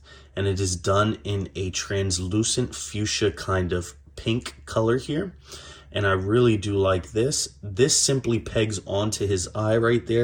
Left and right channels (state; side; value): identical; both; correlation 1.00